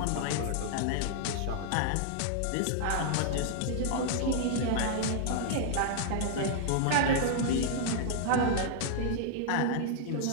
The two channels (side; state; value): both; different; correlation -0.01